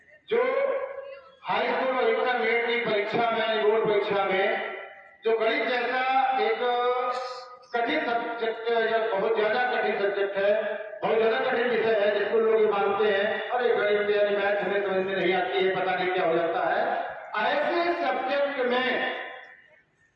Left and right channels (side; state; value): both; identical; correlation 1.00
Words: जो हाई स्कूल और इंटरमीडिएट की परीक्षा में, बोर्ड परीक्षा में जो गणित जैसा एक कठिन सब्जेक्ट या बहुत ज्यादा कठिन सब्जेक्ट है, बहुत ज्यादा कठिन विषय है, जिसको लोग मानते हैं अरे गणित यानी मैथ हमें समझ में नहीं आती है, पता नहीं क्या हो जाता है। ऐसे सब्जेक्ट में